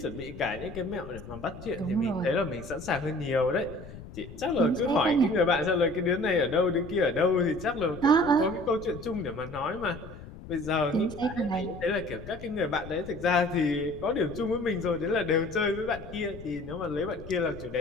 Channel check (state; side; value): noise; left; rumble, 14 dB below the sound